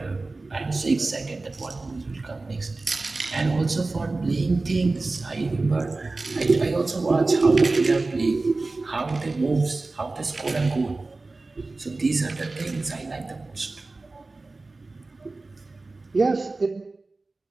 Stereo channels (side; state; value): left; quieter; 3.4 dB